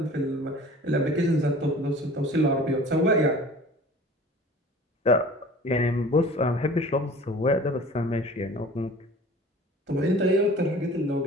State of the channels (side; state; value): both; normal; correlation 0.45